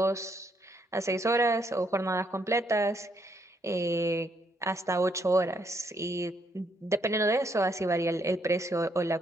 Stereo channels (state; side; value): normal; both; correlation 0.73